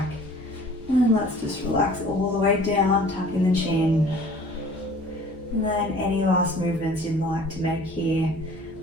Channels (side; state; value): both; normal; correlation 0.49